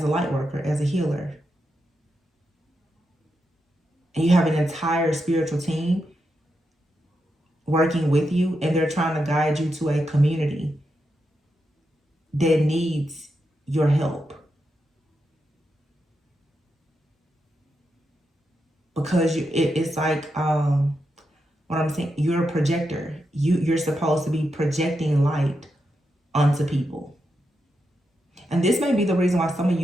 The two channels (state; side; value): normal; both; correlation 0.85